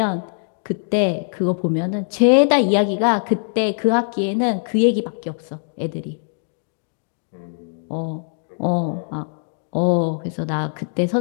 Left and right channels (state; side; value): silent; right; digital silence